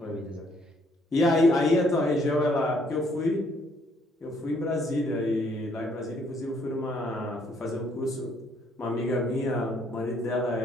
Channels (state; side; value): normal; both; correlation 0.67